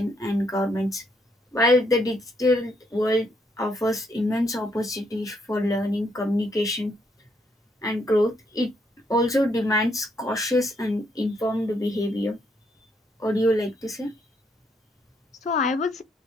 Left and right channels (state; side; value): normal; both; correlation 0.74